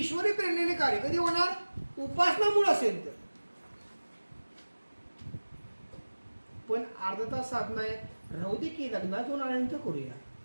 प्रेरणेने कार्य कधी होणार? उपासना मूळ असेल तर. पण अर्धा तास साधना आहे, राहू दे की लग्नात जाऊन आल्यानंतर करूया.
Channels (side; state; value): both; inverted; correlation -1.00